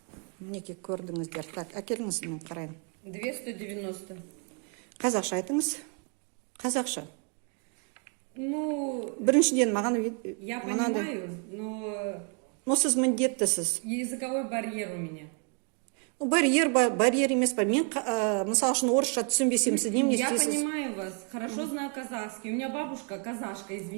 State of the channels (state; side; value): quieter; left; 36.1 dB